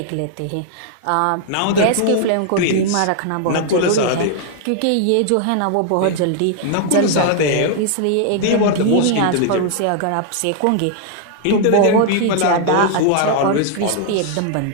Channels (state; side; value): different; both; correlation 0.00